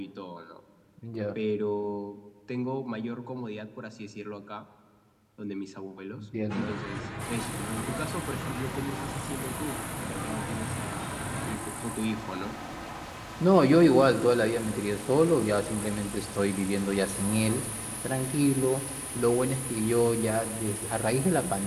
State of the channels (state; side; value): identical; both; correlation 1.00